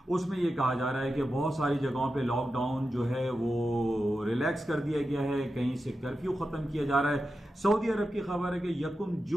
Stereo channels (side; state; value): both; normal; correlation 0.91